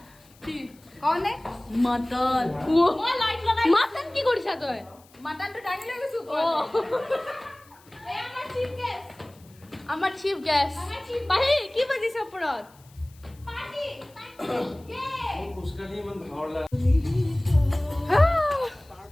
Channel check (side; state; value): left; noise; hiss, 28 dB below the sound